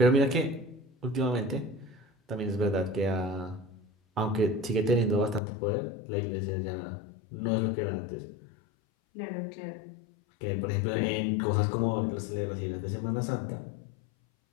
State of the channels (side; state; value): right; drops out; at 5.4 s